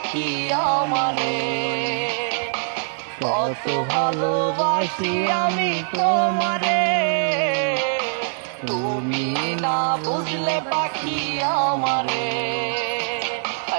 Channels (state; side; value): silent; left; digital silence